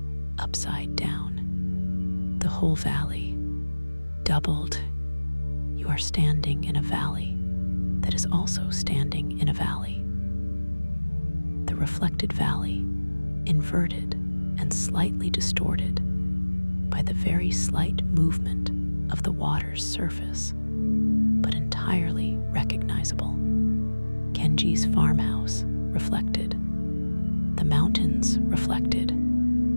upside down. The whole valley, doubled. You are standing in a valley that is also standing in a valley. The reflected valley, inverted and slightly distorted by the very slight movement of the water's surface, but entirely recognizable. Kenji's farmhouse reflected. The mountains reflected.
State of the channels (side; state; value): both; inverted; correlation -1.00